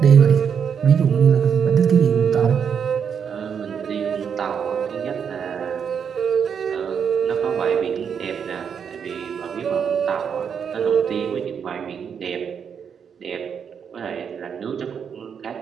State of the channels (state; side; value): quieter; left; 7.2 dB